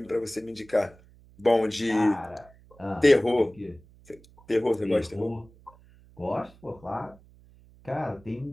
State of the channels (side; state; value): right; noise; hum, 26 dB below the sound